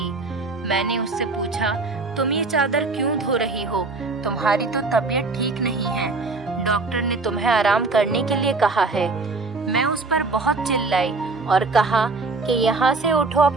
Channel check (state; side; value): quieter; left; 3.7 dB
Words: मैंने उससे पूछा, तुम ये चादर क्यों धो रही हो? तुम्हारी तो तबीयत ठीक नहीं है, डॉक्टर ने तुम्हें आराम करने के लिए कहा है। मैं उस पर बहुत चिल्लाई और कहा कि यहाँ से उठो,